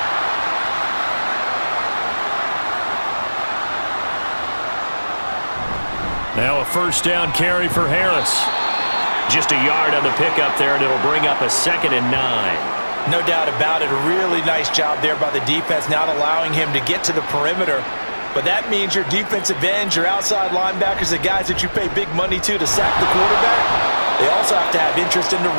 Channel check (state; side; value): inverted; both; correlation -1.00